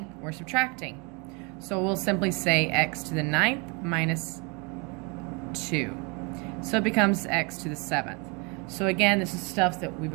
we're subtracting. So we'll simply say x to the 9th minus 2. So it becomes x to the 7th. So again, this is stuff that we've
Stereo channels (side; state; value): left; quieter; 30.9 dB